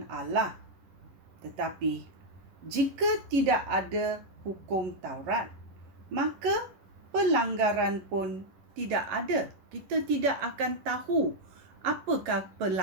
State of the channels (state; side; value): late; left; 11 ms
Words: Allah, tetapi jika tidak ada hukum Taurat, maka pelanggaran pun tidak ada. Kita tidak akan tahu apakah